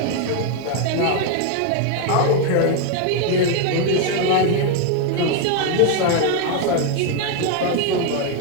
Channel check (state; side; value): different; both; correlation 0.01